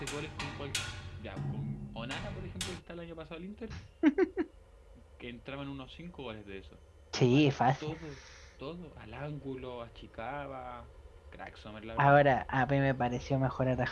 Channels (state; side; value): identical; both; correlation 1.00